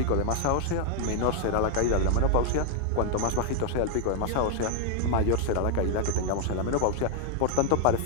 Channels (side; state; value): both; different; correlation 0.00